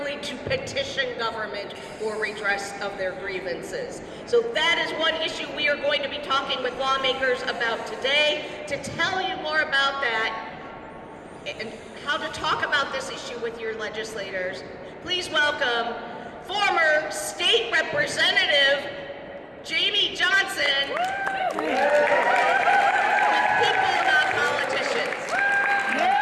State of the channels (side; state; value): both; identical; correlation 1.00